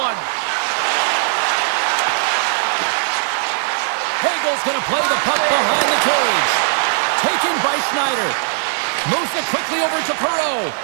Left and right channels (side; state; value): left; silent; 56 dB below the other